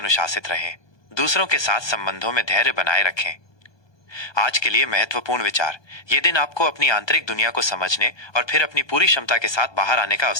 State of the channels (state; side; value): late; right; 1.2 ms